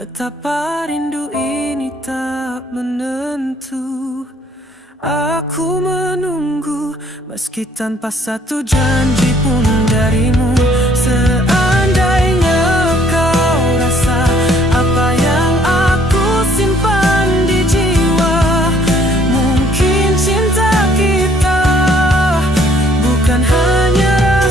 Betapa rindu ini tak menentu. Aku menunggu meski tanpa satu janji pun darimu. Seandainya kau rasa apa yang aku simpan di jiwa, mungkin cinta kita bukan hanya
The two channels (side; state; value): both; normal; correlation 0.62